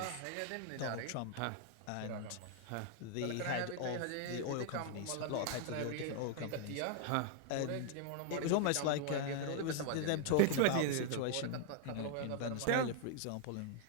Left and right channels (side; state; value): both; different; correlation 0.00